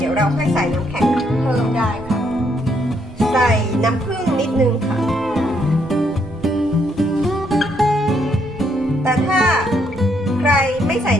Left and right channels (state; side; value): normal; both; correlation 0.73